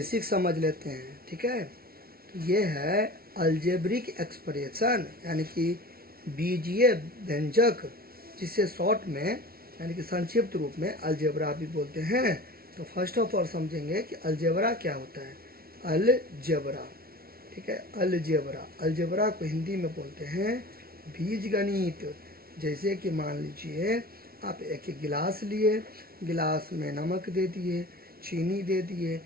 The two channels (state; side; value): late; left; 0.44 ms